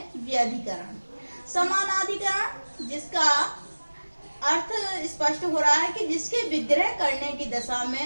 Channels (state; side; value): inverted; both; correlation -1.00